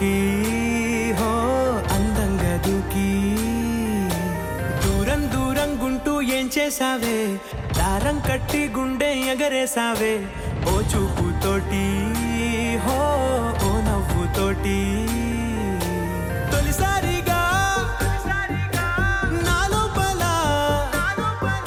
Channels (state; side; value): identical; both; correlation 1.00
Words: హో అందంగా దూకి. దూరం దూరం గుంటూ ఏం చేసావే, దారం కట్టి గుండె ఎగరేసావే ఓ చూపుతోటి, హో ఓ నవ్వుతోటి. తొలిసారిగా